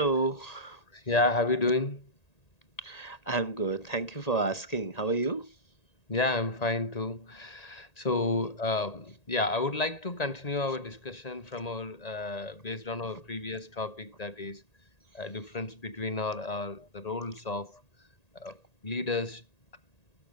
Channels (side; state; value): right; late; 1.8 ms